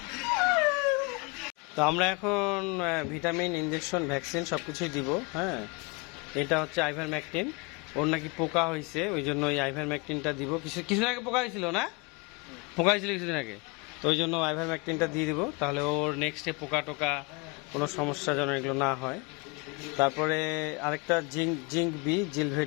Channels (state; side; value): quieter; right; 28.8 dB